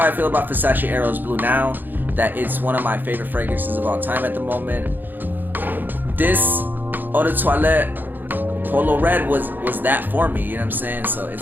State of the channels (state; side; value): late; left; 0.089 ms